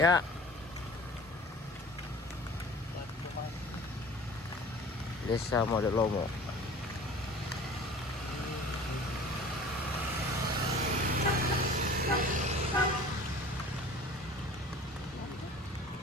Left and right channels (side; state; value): both; normal; correlation 0.44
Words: Ya. Desa Boalemo.